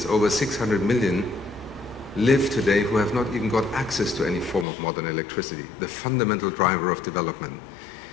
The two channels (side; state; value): right; drops out; at 4.7 s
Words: over 600 million, live today who have not even got access to any form of modern electricity, the fundamental driver of development.